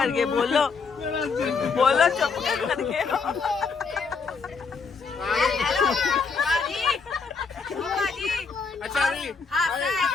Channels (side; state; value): right; quieter; 5.1 dB